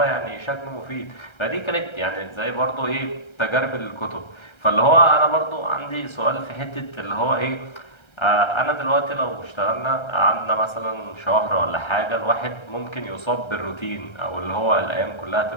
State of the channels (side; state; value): right; late; 1.3 ms